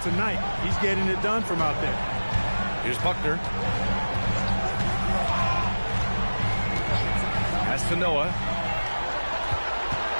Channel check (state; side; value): inverted; both; correlation -1.00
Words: tonight. He's getting it done from out there. Here's Buckner. Pass to Noah.